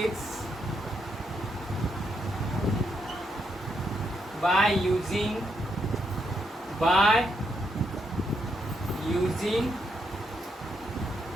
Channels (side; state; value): both; normal; correlation 0.79